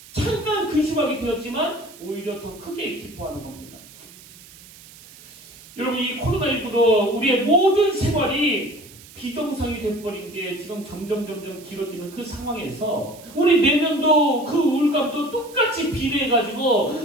근심하게 되었지만 오히려 더 크게 기뻐하는 겁니다. 여러분 이 코로나19로 우리의 모든 생활이 비정상이 돼버린 게 지금 점점 길어지는 그 상황에서 우리 내면도 그 우울감도 똑같이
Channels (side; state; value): right; noise; hiss, 21 dB below the sound